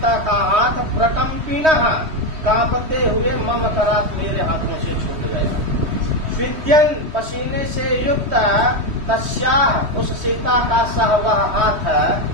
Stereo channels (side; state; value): left; late; 3.1 ms